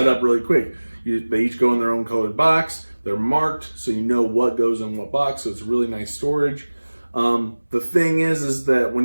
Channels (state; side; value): inverted; both; correlation -1.00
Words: really quick. They each go in their own colored box. They're marked, so you know what goes in what box. So it's really nice storage. The thing is that